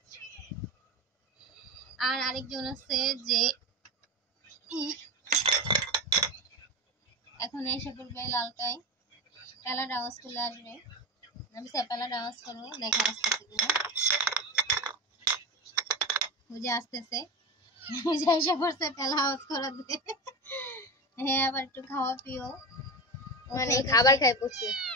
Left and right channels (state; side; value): normal; both; correlation 0.22